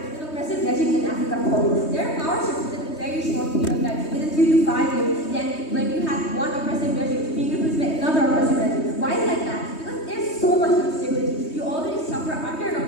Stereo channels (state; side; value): late; right; 3.2 ms